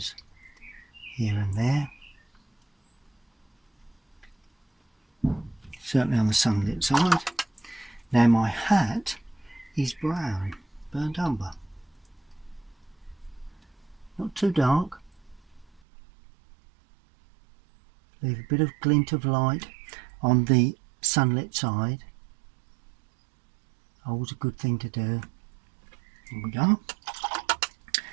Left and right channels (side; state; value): left; drops out; at 15.8 s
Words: here and there. certainly on the sunlit side. Now my hat is brown, burnt umber, not too dark. Leave a bit of glint of light on the sunlit side. Always a good thing to do. Here we go.